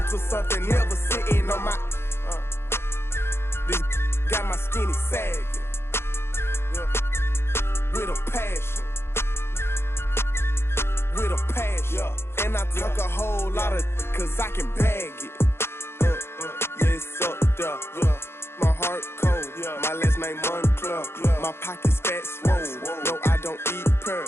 to something, never sitting on my. This got my skinny sagging, yeah. With a passion. With a passion, yeah. And I talk a whole lot of, cause I can bag it. Yes, up there, yeah. My heart cold, yeah. My last name Moncler, yeah. My pockets fat swole. No, I don't eat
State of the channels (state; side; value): late; right; 0.12 ms